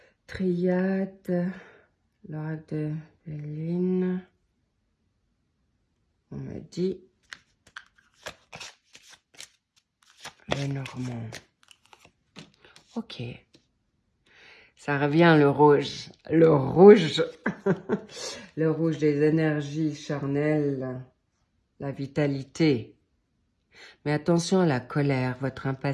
Triade, l'oracle de Béline. On me dit le Normand. Ok. Ça revient le rouge. Le rouge. Le rouge des énergies charnelles. La vitalité. Mais attention à la colère, votre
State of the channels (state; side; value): identical; both; correlation 1.00